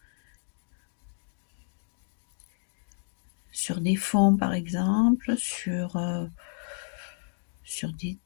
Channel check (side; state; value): right; silent; digital silence